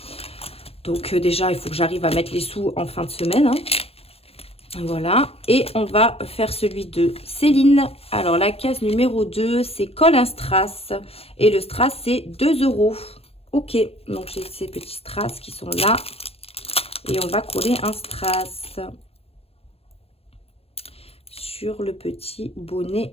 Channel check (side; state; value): right; late; 0.29 ms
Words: Donc déjà, il faut que j'arrive à mettre les sous en fin de semaine. Hein. Voilà. Et on va faire celui de Céline. Alors, la case numéro 2, c'est colle un strass. Et le strass, c'est 2 €. Ok. Donc, j'ai ces petits strass qui sont là. Et on va coller un strass sur le petit